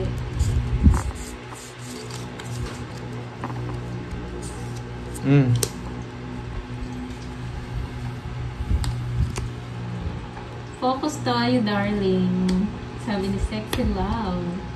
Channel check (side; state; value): both; identical; correlation 1.00